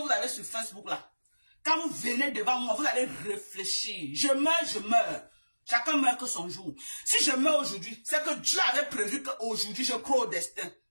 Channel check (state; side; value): inverted; both; correlation -1.00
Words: avez sur Facebook là. Quand vous venez devant moi, vous allez réfléchir. Je meurs. Chacun meurt que son jour. Si je meurs aujourd'hui, c'est que Dieu avait prévu qu'aujourd'hui je crois au destin.